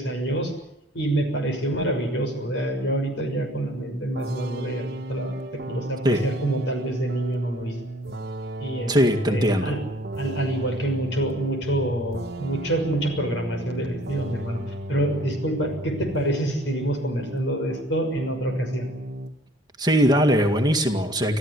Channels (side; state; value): both; normal; correlation 0.55